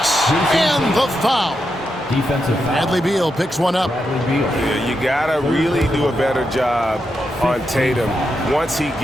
And the foul. Defensive foul. Bradley Beal picks one up. Yeah, you gotta really do a better job on Tatum once he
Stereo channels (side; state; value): both; normal; correlation 0.85